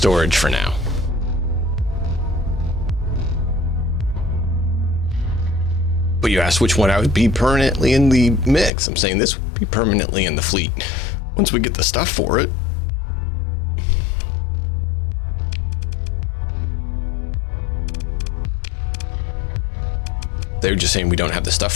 for now. But you asked which one I would be permanently in the mix. I'm saying this would be permanently in the fleet once we get the stuff for it. They're just saying we don't have the stuff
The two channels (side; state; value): right; drops out; at 8.7 s